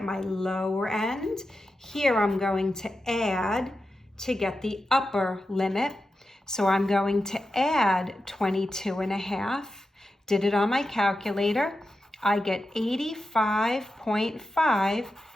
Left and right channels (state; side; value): normal; both; correlation 0.90